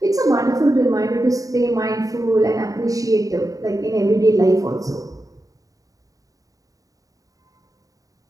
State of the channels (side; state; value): left; late; 0.17 ms